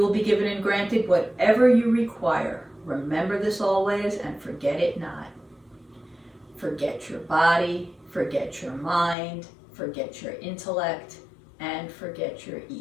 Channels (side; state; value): right; drops out; at 9.2 s